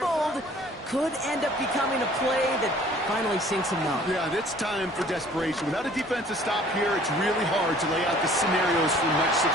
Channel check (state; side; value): normal; both; correlation 0.53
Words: could end up becoming a play that finally sinks a note. Yeah, it's time for desperation. Without a defensive stop here, it's really hard to lay out the scenarios for much